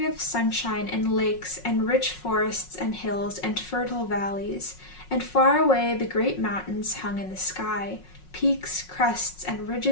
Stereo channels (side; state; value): right; late; 5.5 ms